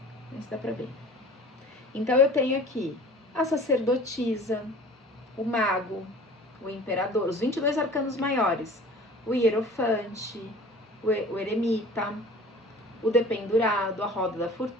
Não sei se dá pra ver. Então eu tenho aqui a sacerdotisa, o mago, o imperador, os 22 arcanos maiores, o hierofante, o eremita, o dependurado, a roda da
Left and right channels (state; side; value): normal; both; correlation 0.44